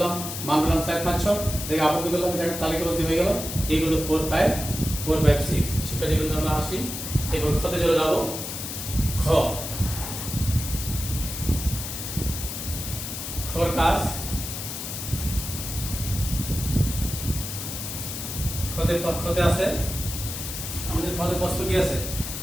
মান পেলাম 4 5 6 দেখে আবদ্ধ করলাম এটা তালিকাবদ্ধ হয়ে গেল এইগুলো 4 5 6 শিক্ষার্থীবৃন্দ আমরা আসি এরপর খতে চলে যাব খর কাজ খতে আছে আমাদের খতের প্রশ্ন কি আছে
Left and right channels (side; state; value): left; noise; hiss, 6 dB below the sound